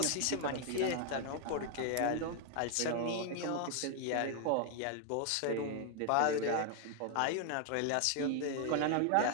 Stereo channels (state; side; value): different; both; correlation 0.00